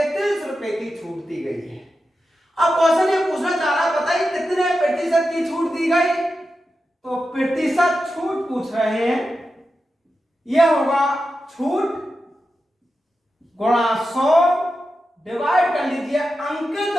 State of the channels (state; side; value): normal; both; correlation 0.90